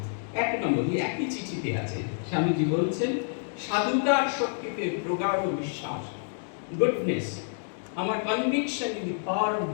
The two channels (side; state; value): right; silent; digital silence